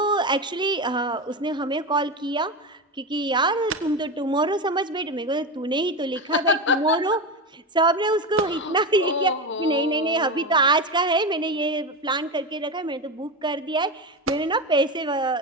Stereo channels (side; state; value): both; normal; correlation 0.18